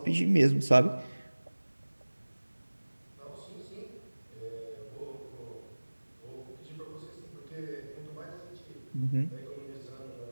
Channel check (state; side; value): inverted; both; correlation -1.00